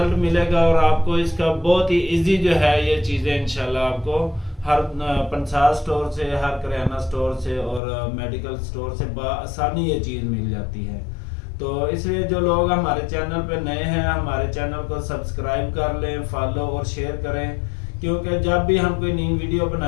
मिलेगा और आपको इसका बहुत ही इजी जो है ये चीज़ें इंशाल्लाह आपको हर पंसार स्टोर से, हर किराना स्टोर से और मेडिकल स्टोर से बआसानी ये चीज़ मिल जाती है। तो इसलिए जो लोग हमारे चैनल पे नए हैं हमारे चैनल को सब्सक्राइब कर लें, फॉलो और शेयर करें, क्योंकि जब भी हम कोई नई वीडियो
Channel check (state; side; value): drops out; right; at 7.8 s